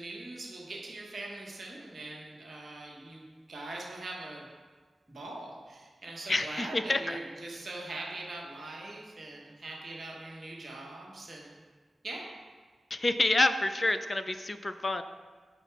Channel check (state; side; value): normal; both; correlation 0.94